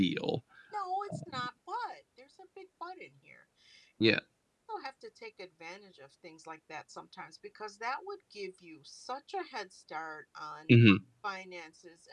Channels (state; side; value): identical; both; correlation 1.00